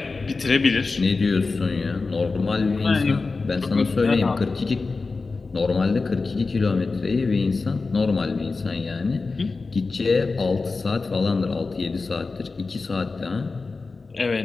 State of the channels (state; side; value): quieter; right; 4.0 dB